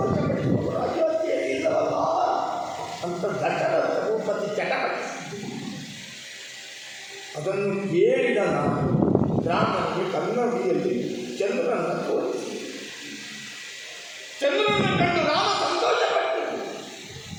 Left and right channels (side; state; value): both; identical; correlation 1.00